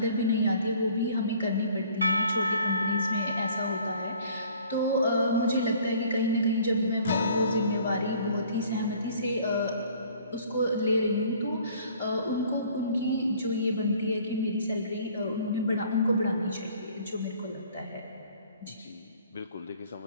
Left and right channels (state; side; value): inverted; both; correlation -0.54